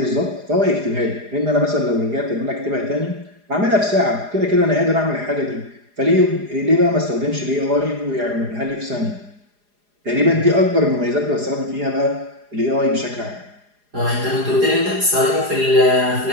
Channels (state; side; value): late; left; 4.9 ms